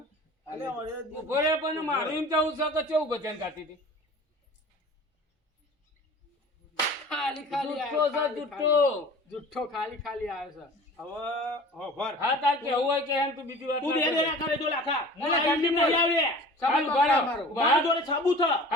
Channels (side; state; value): both; normal; correlation 0.42